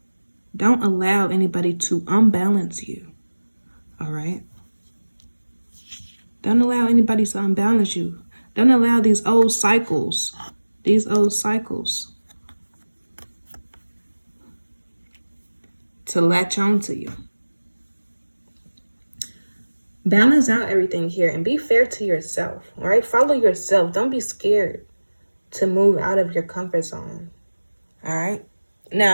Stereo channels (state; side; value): inverted; both; correlation -1.00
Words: Don't allow anybody to unbalance you. All right? Don't allow anybody to unbalance you. Don't allow these old cycles to latch on to you. Balance out everything here and be fair to yourself, all right? Follow yourself. Don't be scared to move out of your comfort zone, all right?